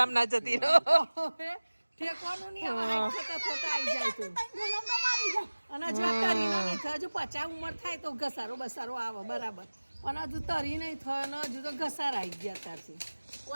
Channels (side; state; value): both; inverted; correlation -1.00